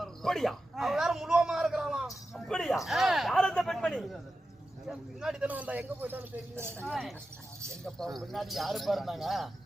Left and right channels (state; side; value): normal; both; correlation 0.92